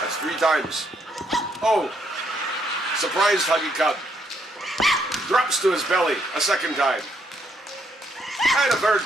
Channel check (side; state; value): both; normal; correlation 0.73